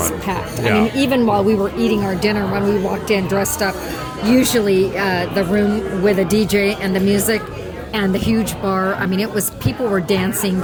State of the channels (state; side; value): identical; both; correlation 1.00